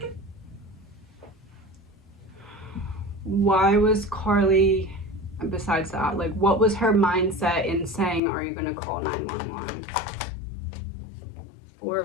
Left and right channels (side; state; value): right; drops out; at 8.2 s